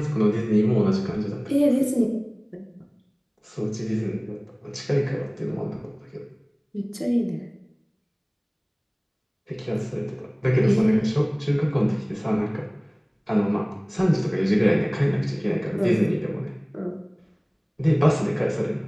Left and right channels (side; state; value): both; identical; correlation 1.00